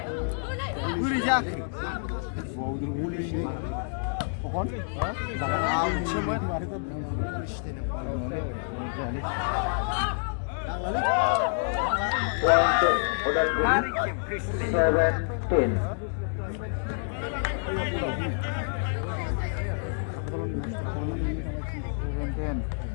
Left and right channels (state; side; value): silent; right; digital silence